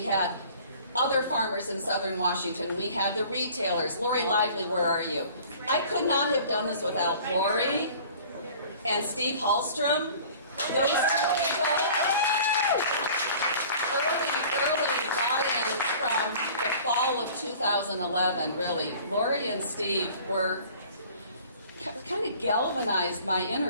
had other farmers in southern Washington. We had the retailers. Lori Lively, where are you? I could not have done this without Lori and Steve Hallstrom. Those two people. Early buy-ins from the fall of 2011, really. Lori and Steve were kind of galvanized my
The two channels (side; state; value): both; inverted; correlation -0.47